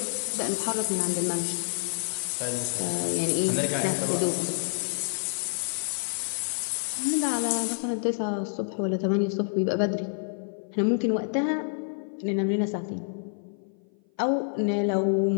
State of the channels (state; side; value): silent; right; 55 dB below the other